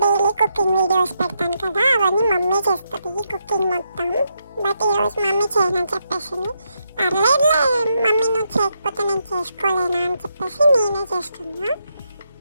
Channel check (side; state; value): both; inverted; correlation -0.81